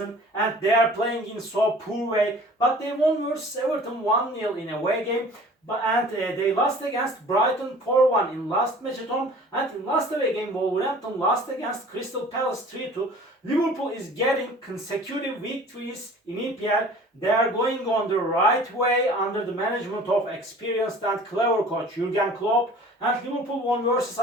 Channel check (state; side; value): normal; both; correlation 0.46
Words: and they are playing in so poor way. But they won versus Everton 1-0 in away game. And they lost against Brighton 4-1 in last match at home, and in last away game Wolverhampton lost against Crystal Palace 3-2. Liverpool is getting consecutive victories in EPL. They are going on the right way under the management of experienced and clever coach Jurgen Klopp. And Liverpool won versus